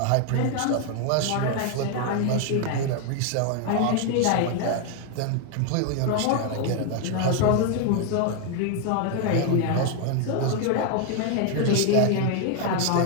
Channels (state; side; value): different; both; correlation 0.00